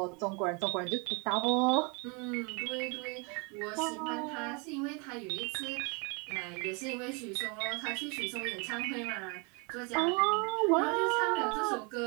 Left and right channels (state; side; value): quieter; left; 32.4 dB